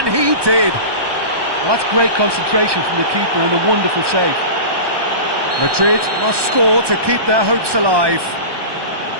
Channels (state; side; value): late; left; 1.2 ms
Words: he did. Well, that's great concentration from the keeper and a wonderful save. Madrid must score to keep their hopes alive.